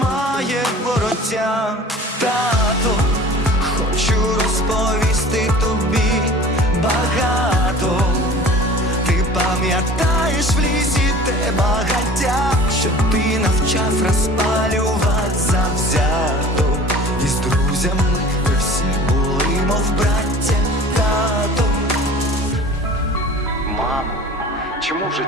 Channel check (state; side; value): normal; both; correlation 0.43